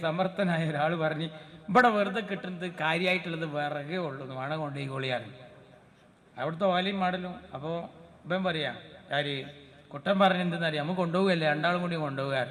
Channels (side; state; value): both; identical; correlation 1.00